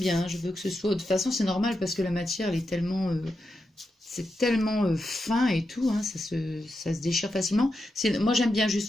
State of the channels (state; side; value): normal; both; correlation 0.87